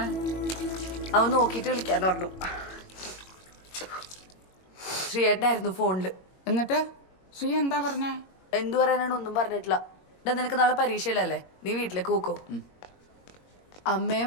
അവൻ നോക്കിയിട്ട് വിളിക്കാന്ന് പറഞ്ഞു. ശ്രീയേട്ടനായിരുന്നു ഫോണില്. എന്നിട്ട് ശ്രീ എന്താ പറഞ്ഞേ? എന്തു പറയാനാണ്, ഒന്നും പറഞ്ഞിട്ടില്ല. ഇതാ നിനക്ക് നാളെ പരീക്ഷയിലല്ലേ, നീ വീട്ടിലേക്ക് പോക്കോ.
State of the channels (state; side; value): late; right; 22 ms